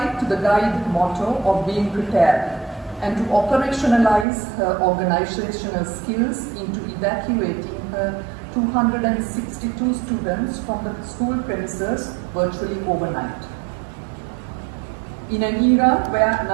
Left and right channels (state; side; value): drops out; left; at 4.2 s